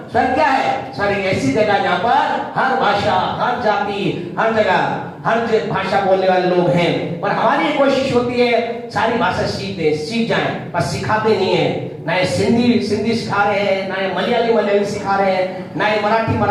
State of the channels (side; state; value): both; identical; correlation 1.00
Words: स्वर्ग क्या है? स्वर्ग एक ऐसी जगह जहाँ पर हर भाषा, हर जाति, हर जगह, हर भाषा बोलने वाले लोग हैं। और हमारी कोशिश होती है सारी भाषा सीख जाएं, पर सिखाते नहीं है। ना ये सिंधी सिखा रहे हैं, ना ये मलयाली सिखा रहे हैं, ना ये